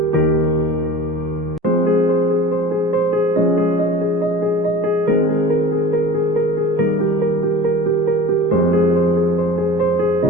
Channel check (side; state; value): both; normal; correlation 0.39